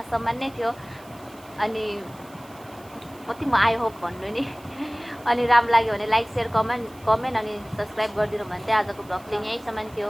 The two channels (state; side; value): noise; right; hiss, 24 dB below the sound